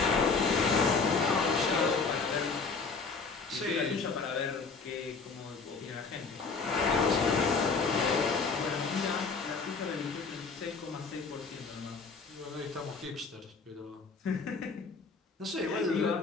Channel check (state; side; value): quieter; right; 4.6 dB